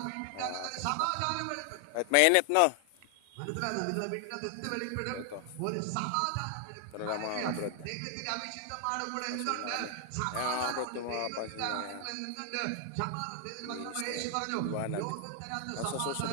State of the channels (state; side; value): different; both; correlation 0.00